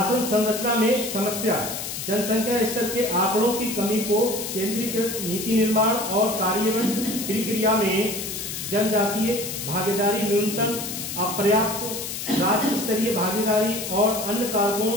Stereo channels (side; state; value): left; noise; hiss, 6 dB below the sound